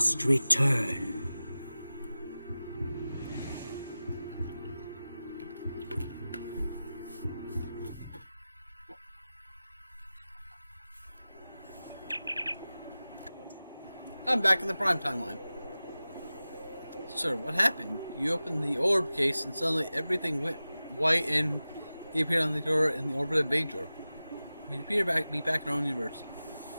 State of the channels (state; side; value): inverted; both; correlation -0.96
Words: return. I'm back in the prime timeline. Sir, what happened? You opened the orb case and suddenly everything went white and he appeared on the door in the orbit of Bajor. We appear to be back in our own universe.